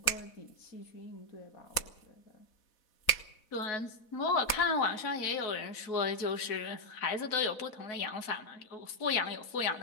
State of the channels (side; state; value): right; late; 4.0 ms